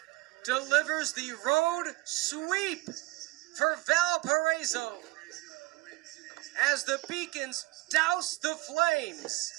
delivers the road sweep for Valparaiso as the Beacons douse the Flames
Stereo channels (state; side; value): quieter; left; 21.0 dB